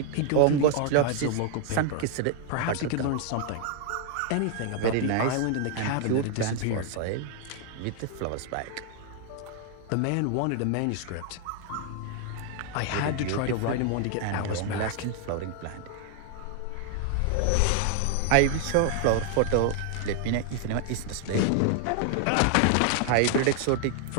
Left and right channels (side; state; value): both; different; correlation 0.00